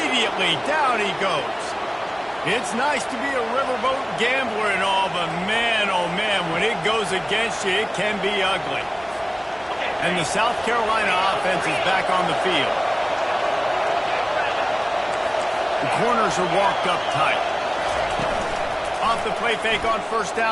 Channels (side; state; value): both; identical; correlation 1.00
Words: Down he goes. It's nice to be a riverboat gambler and all, but man, oh man, when it goes against you, it can be ugly. And the South Carolina offense is back on the field. The corners are walked up tight. Off the play fake on 1st